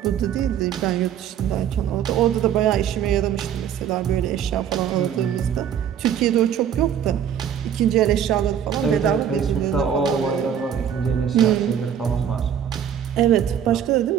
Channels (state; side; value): quieter; left; 9.1 dB